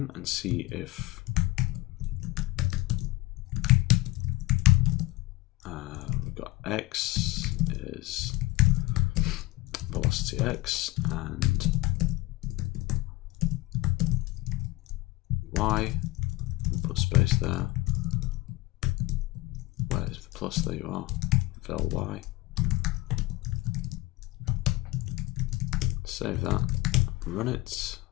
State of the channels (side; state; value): right; quieter; 20.6 dB